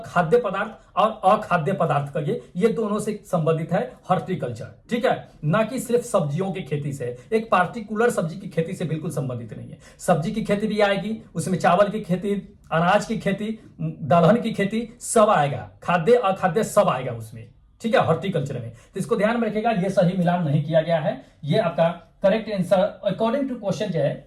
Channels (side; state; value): both; identical; correlation 1.00